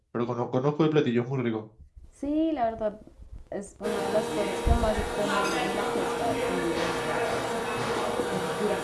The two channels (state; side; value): identical; both; correlation 1.00